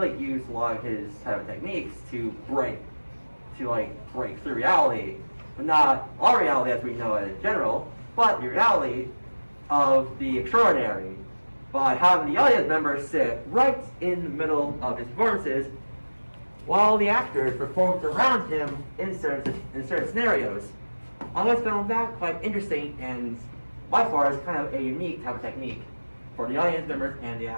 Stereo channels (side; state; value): both; inverted; correlation -1.00